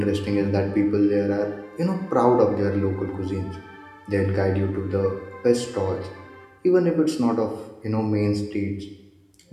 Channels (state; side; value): identical; both; correlation 1.00